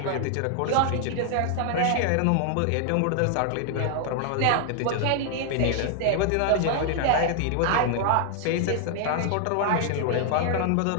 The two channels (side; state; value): both; different; correlation 0.00